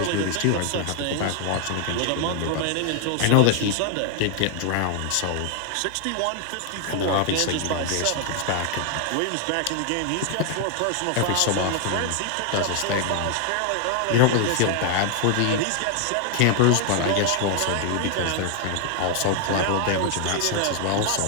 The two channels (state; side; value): different; both; correlation 0.00